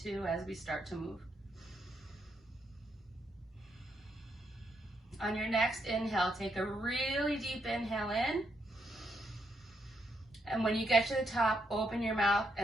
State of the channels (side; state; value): both; normal; correlation 0.78